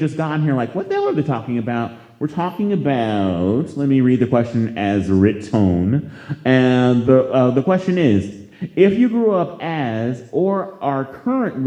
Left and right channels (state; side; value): identical; both; correlation 1.00